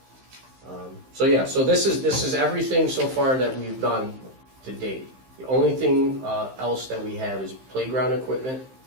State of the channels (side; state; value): left; late; 15 ms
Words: So yeah, so this is everything so far that we've done to date. The only thing else that we have is playground equipment,